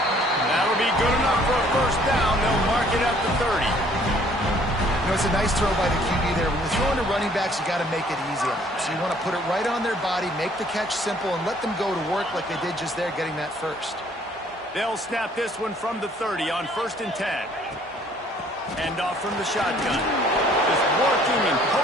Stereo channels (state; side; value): normal; both; correlation 0.59